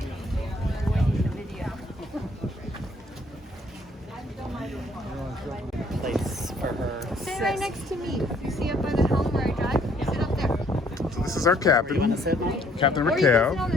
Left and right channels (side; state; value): both; normal; correlation 0.63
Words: Place for her. Sit right next to me. You see up by the helm where I drive? Sit up there. So this is our captain, You want to sit? Captain Or you can Raquel. sit on